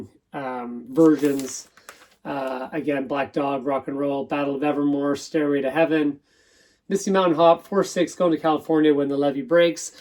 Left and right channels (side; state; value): both; identical; correlation 1.00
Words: versions. Again, Black Dog, Rock and Roll, Battle of Evermore, Stairway to Heaven, Misty Mountain Hop, 4-6, Going to California, When the Levee Breaks.